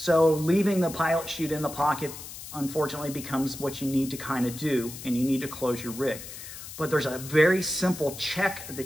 leaving the pilot chute in the pocket unfortunately becomes what you need to kind of do, and you need to close your rig. But there's a very simple check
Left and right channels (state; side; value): noise; left; hiss, 12 dB below the sound